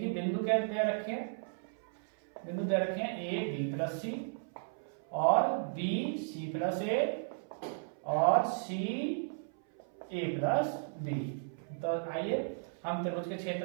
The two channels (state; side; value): silent; left; 54 dB below the other